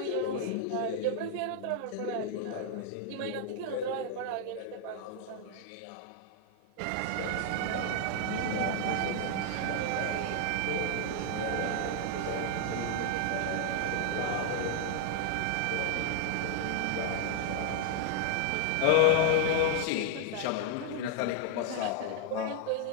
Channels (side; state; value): both; different; correlation 0.00